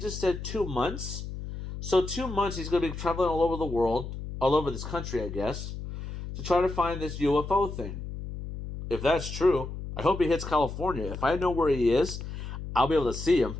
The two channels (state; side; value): noise; left; hum, 8 dB below the sound